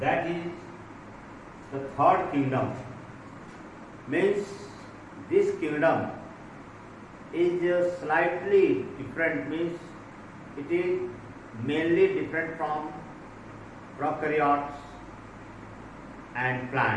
is the third kingdom, means this kingdom is slightly different, means it is mainly different from prokaryotes and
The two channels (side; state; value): both; identical; correlation 1.00